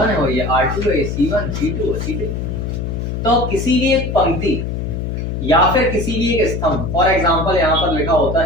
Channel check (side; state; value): left; noise; hum, 3 dB below the sound